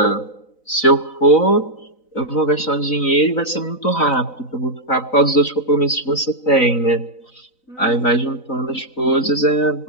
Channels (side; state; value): right; late; 3.9 ms